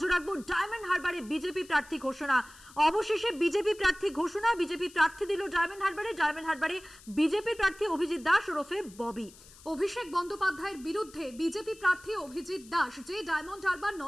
রাখবো, ডায়মন্ড হারবারে বিজেপি প্রার্থী ঘোষণা। অবশেষে বিজেপি প্রার্থী ঘোষণা। বিজেপি প্রার্থী দিল ডায়মন্ড হারবারে বিজেপি প্রার্থী অভিজিৎ দাস ওরফে ববি। অভিষেক বন্দ্যোপাধ্যায়ের বিরুদ্ধে বিজেপি প্রার্থী অভিজিৎ দাস, যে ডায়মন্ড হারবার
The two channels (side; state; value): left; noise; hiss, 22 dB below the sound